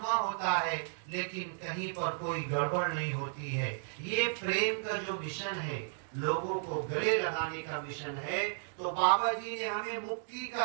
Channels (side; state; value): left; silent; digital silence